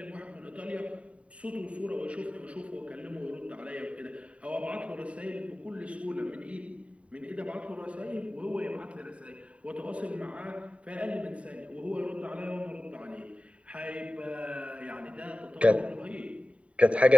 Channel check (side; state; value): left; late; 0.064 ms